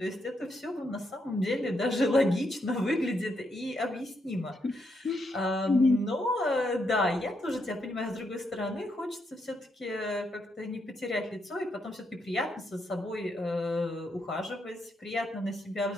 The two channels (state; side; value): normal; both; correlation 0.79